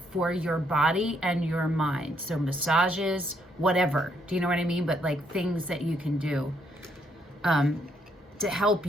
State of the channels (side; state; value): both; normal; correlation 0.72